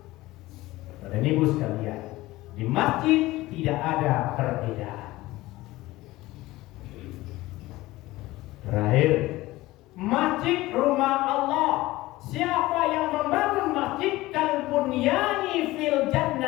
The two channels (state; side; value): quieter; right; 18.4 dB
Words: Pada ibu sekalian, di masjid tidak ada perbedaan. Terakhir, masjid rumah Allah. Siapa yang membangun masjid kalbunyani fil